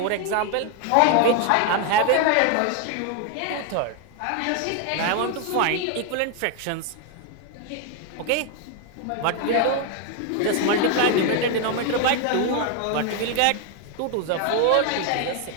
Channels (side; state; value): both; different; correlation 0.01